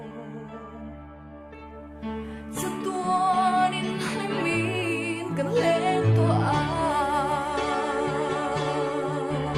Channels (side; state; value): both; identical; correlation 1.00